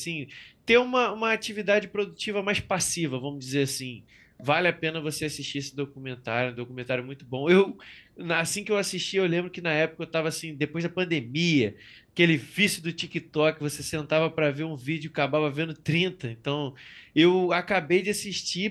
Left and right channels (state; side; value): identical; both; correlation 1.00